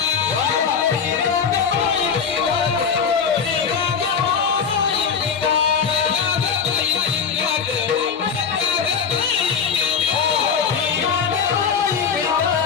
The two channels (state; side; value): quieter; right; 6.4 dB